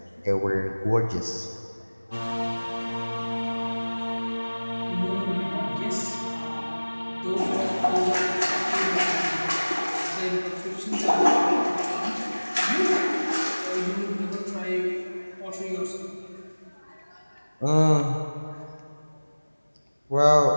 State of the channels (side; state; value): both; inverted; correlation -1.00